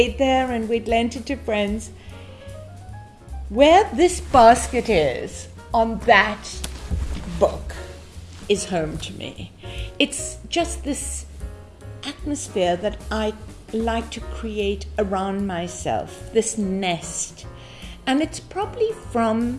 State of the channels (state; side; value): identical; both; correlation 1.00